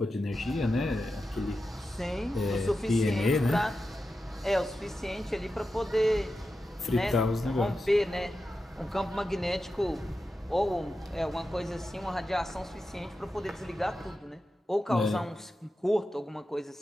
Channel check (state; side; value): normal; both; correlation 0.91